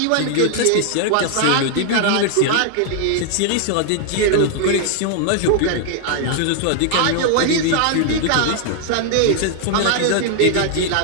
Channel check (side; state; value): both; different; correlation 0.00